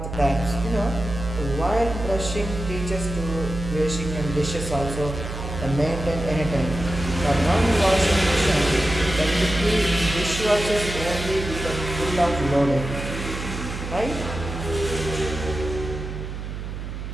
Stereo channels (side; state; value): right; noise; hum, 7 dB below the sound